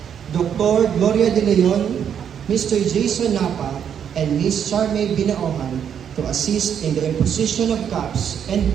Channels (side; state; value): left; quieter; 8.4 dB